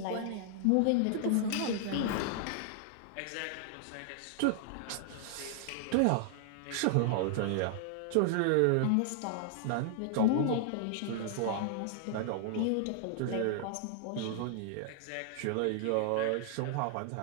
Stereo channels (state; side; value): different; both; correlation 0.00